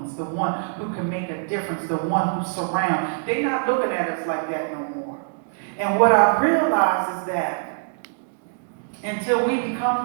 the one who can make a difference, the one who surrounds. They're not looking at us like that no more. And what I realize is that until we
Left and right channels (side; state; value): left; silent; digital silence